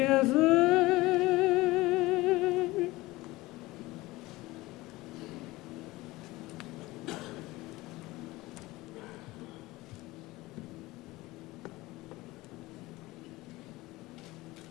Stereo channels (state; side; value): quieter; right; 19.8 dB